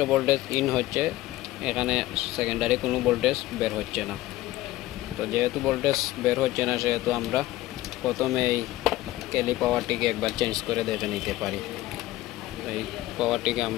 ভোল্টেজ ইন হচ্ছে, এখানে সেকেন্ডারি কোনো ভোল্টেজ বের হচ্ছে না। তো যেহেতু ভোল্টেজ বের হচ্ছে না, সেহেতু আমরা প্রথমে এই ক্যালি পাওয়ারটিকে একবার চেঞ্জ করে দেখে নিতে পারি। এই পাওয়ারটিকে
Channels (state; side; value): quieter; right; 16.6 dB